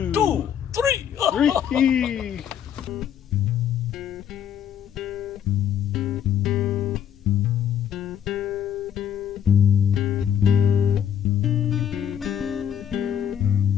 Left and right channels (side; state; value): right; quieter; 9.2 dB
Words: two, three. 3.